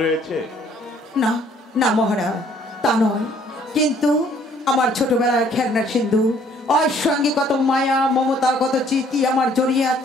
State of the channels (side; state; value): both; normal; correlation 0.61